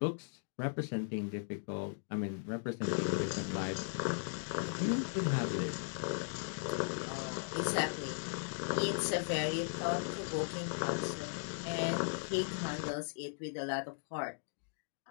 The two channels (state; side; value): silent; right; digital silence